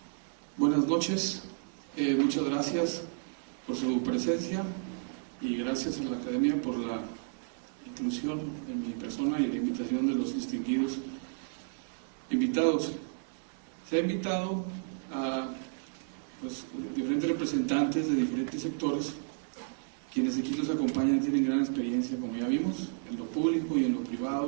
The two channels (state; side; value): silent; left; digital silence